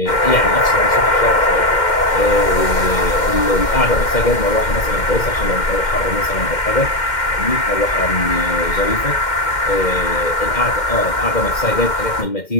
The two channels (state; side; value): late; right; 2.1 ms